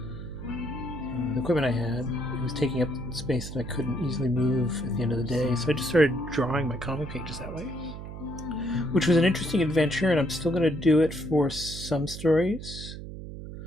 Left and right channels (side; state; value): right; noise; hum, 10 dB below the sound